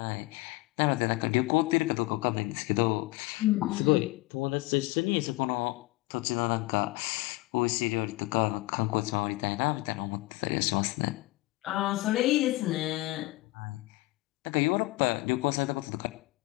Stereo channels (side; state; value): right; quieter; 20.8 dB